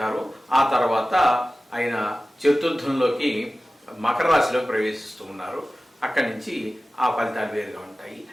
ఆ తర్వాత ఆయన చతుర్థంలోకి మకర రాశిలోకి ప్రవేశిస్తూ ఉన్నారు. అక్కడి నుంచి ఆ ఫలితాలు వేరుగా ఉంటాయి.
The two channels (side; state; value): both; normal; correlation 0.96